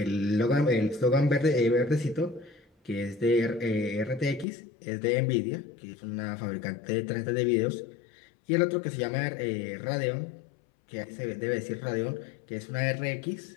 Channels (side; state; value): right; drops out; at 4.5 s